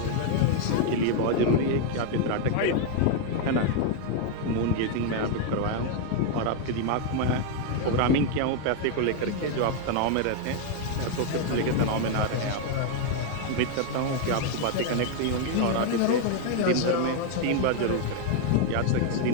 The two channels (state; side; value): different; both; correlation 0.00